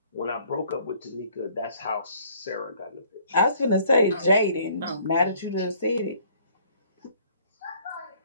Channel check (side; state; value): both; inverted; correlation -0.58